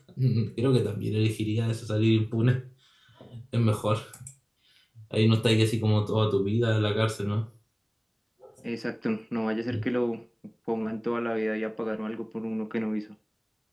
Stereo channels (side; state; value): both; identical; correlation 1.00